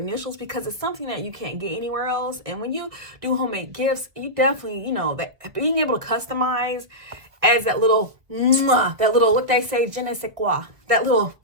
because it's something that you can't get anywhere else. And when you do homemade gifts, you definitely, you know, that being able to customize adds that little, what they say, je ne sais quoi, that little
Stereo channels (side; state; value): left; late; 1.3 ms